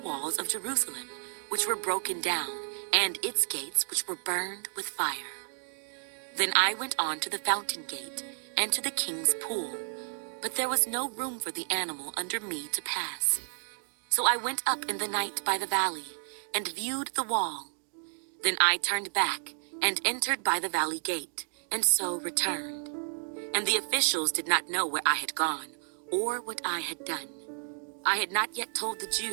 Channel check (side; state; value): left; silent; digital silence